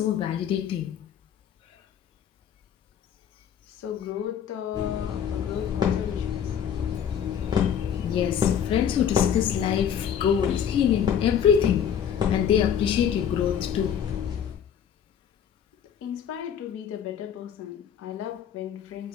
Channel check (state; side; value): quieter; right; 8.5 dB